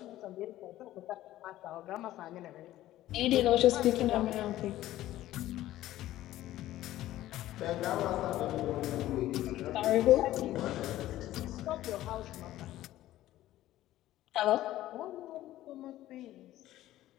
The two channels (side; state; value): right; quieter; 14.6 dB